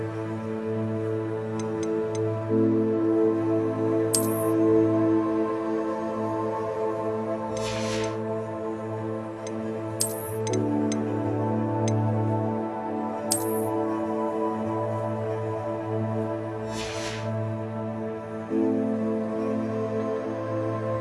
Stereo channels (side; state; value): both; identical; correlation 1.00